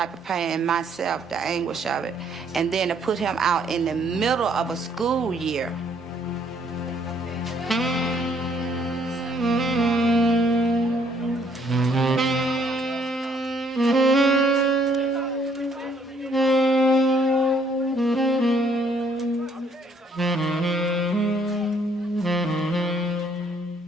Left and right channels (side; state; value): both; normal; correlation 0.65